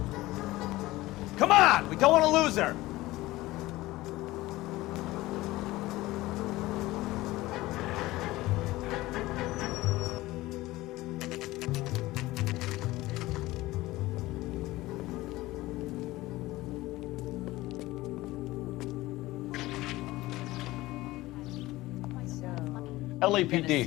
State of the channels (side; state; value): right; quieter; 18.4 dB